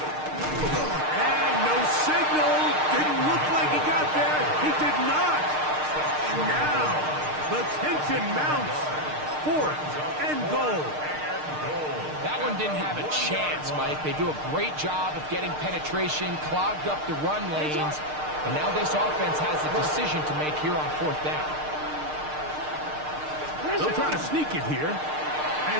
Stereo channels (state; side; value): late; left; 6.6 ms